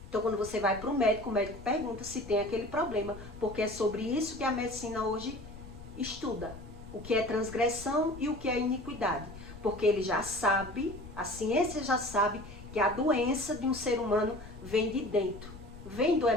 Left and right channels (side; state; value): left; noise; rumble, 16 dB below the sound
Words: Então, quando você vai para o médico pergunta se tem aquele problema, porque é sobre isso que a medicina hoje estuda. O que é transgressão e o que é iniquidade. Porque ele já sabe, a ciência já sabe, que a doença de um ser humano vem de dentro, vem do